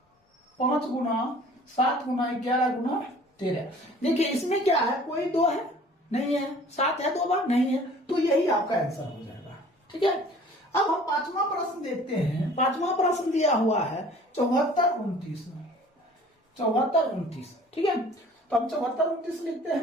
5 गुना 7 गुना 11 गुना 13। देखिए इसमें क्या है, कोई 2 है नहीं है, 7 है 2 बार नहीं है, तो यही आपका आंसर हो जाएगा। ठीक है, अब हम पांचवा प्रश्न देखते हैं। पांचवा प्रश्न दिया हुआ है 74 29, ठीक है, तो हम 74 29 लिखते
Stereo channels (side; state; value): both; normal; correlation 0.49